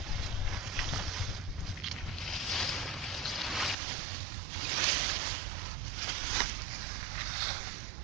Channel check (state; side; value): drops out; left; at 3.8 s